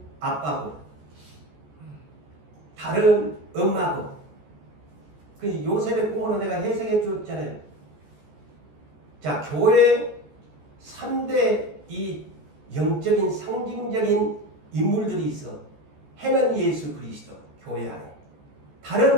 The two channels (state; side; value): late; left; 14 ms